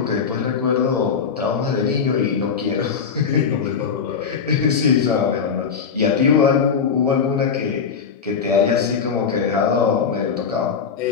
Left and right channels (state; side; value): quieter; right; 6.3 dB